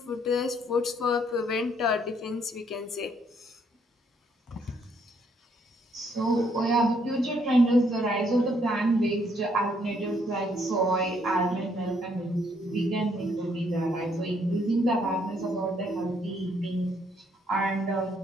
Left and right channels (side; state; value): both; normal; correlation 0.70